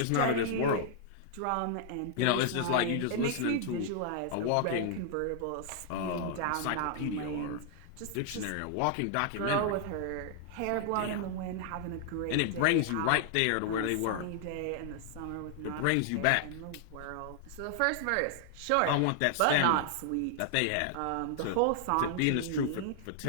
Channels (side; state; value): both; different; correlation 0.00